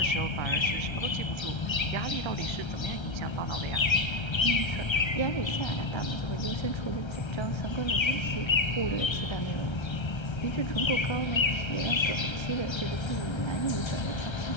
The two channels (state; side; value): late; right; 1.3 ms